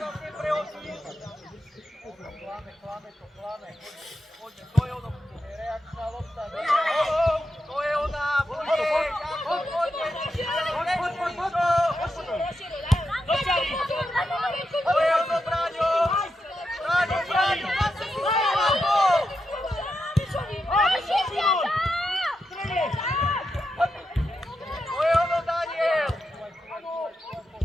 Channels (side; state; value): both; normal; correlation 0.86